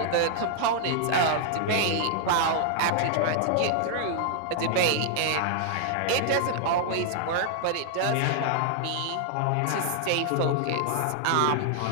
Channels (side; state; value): both; different; correlation -0.01